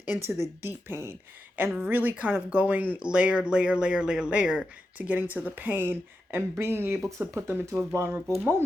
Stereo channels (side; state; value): both; normal; correlation 0.89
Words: into the deep pain and really kind of going layer to getting to the pain, and being able to put them into a vulnerable